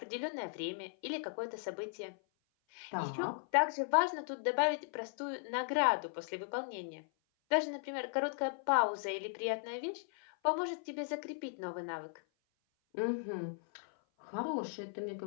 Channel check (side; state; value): right; silent; 53 dB below the other